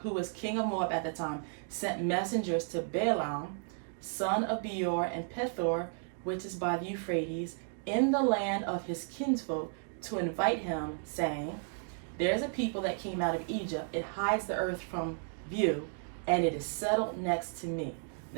who was king of Moab at the time, sent messengers to Balaam, son of Beor, and Pethor, which is by the Euphrates, in the land of his kinsfolk, to invite him, saying, there's a people that came out of Egypt. It hides the earth from view, and it is settled next to me.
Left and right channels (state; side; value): silent; left; 55 dB below the other